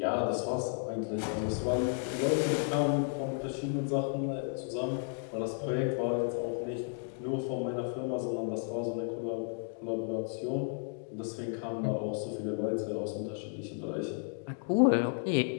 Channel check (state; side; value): silent; right; 56 dB below the other